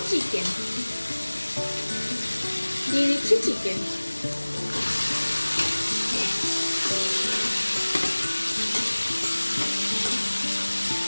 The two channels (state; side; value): inverted; both; correlation -1.00